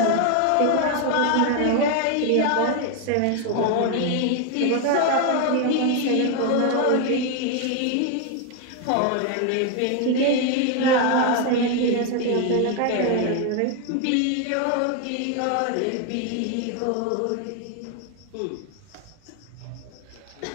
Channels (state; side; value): different; both; correlation 0.01